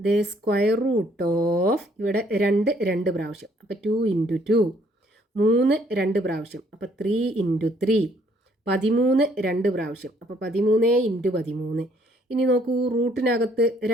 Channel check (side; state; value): both; normal; correlation 0.65